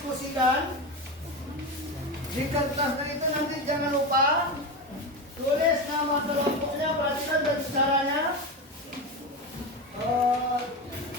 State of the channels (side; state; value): both; normal; correlation 0.19